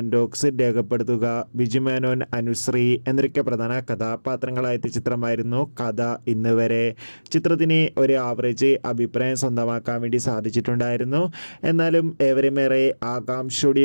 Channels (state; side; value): inverted; both; correlation -1.00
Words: ബോക്സിൽ രേഖപ്പെടുത്തുക. ബിജു മേനോൻ, അനുശ്രീ എന്നൊക്കെ പ്രധാന കഥാപാത്രങ്ങളായ ചിത്രമായിരുന്നു കഥ ഇന്ന് വരെ. ചിത്രത്തിന് ഒരു ആവറേജ് അഭിപ്രായം സ്വന്തമാക്കാൻ വേണ്ടി സാധിച്ചിട്ടുണ്ടായിരുന്നു. എന്നാലും ഏവരുമേറെ